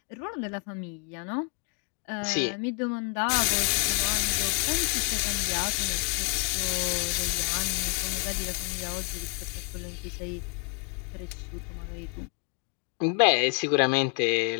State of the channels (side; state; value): right; quieter; 34.5 dB